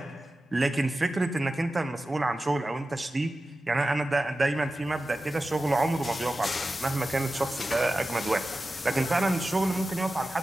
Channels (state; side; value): normal; both; correlation 0.94